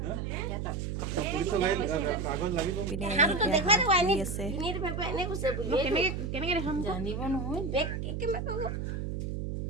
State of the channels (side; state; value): right; noise; hum, 3 dB below the sound